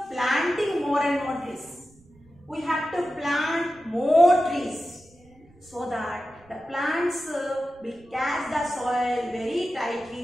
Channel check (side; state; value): right; noise; rumble, 28 dB below the sound